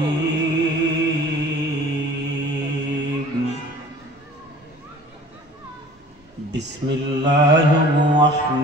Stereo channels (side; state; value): both; normal; correlation 0.46